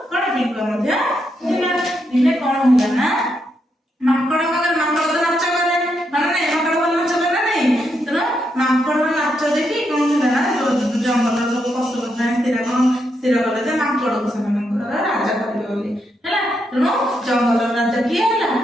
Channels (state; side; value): normal; both; correlation 0.80